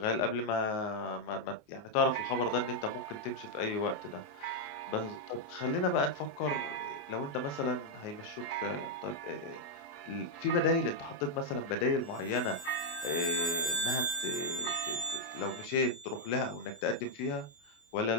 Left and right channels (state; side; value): late; right; 28 ms